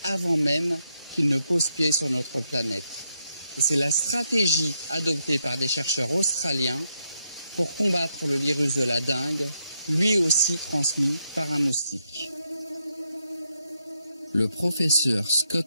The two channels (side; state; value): both; inverted; correlation -0.79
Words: avant même qu'ils ne posent pied sur notre planète. Et c'est la stratégie adoptée par des chercheurs australiens pour combattre le virus de la dengue, lui aussi transmis par un moustique. Le professeur